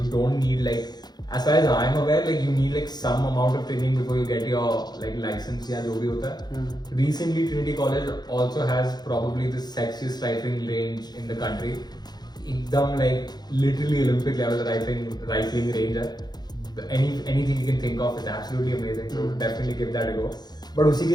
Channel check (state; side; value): late; right; 0.20 ms